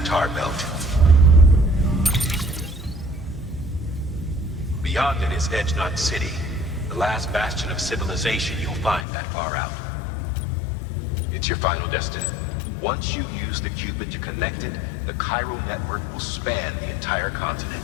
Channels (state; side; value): drops out; right; at 9.1 s